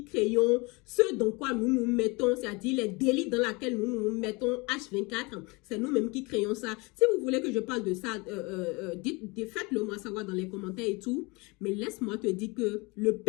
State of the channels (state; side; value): quieter; right; 26.6 dB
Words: créons ce dans quoi nous nous mettons, c'est-à-dire les délits dans lesquels nous nous mettons H24. C'est nous-mêmes qui créons ça. Si vous voulez que je parle de ça, faites-le moi savoir dans les commentaires et tout. Mais laisse-moi te dire que le